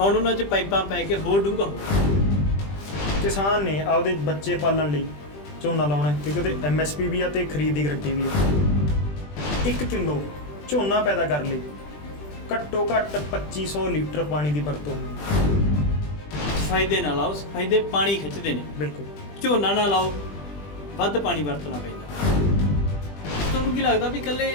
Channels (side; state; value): right; late; 20 ms